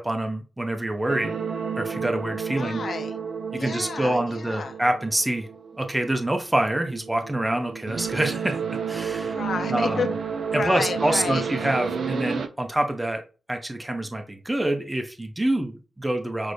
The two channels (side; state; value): both; normal; correlation 0.92